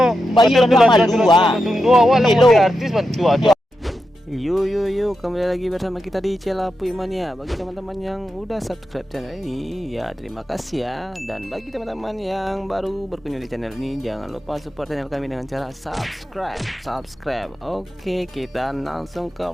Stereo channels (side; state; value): both; normal; correlation 0.88